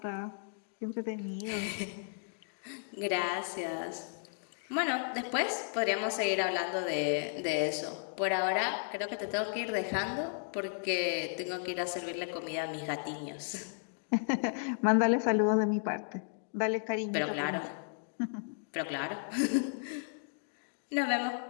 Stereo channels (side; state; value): right; silent; digital silence